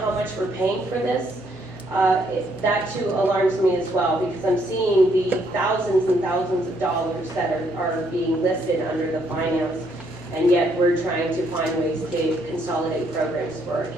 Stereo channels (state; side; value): normal; both; correlation 0.71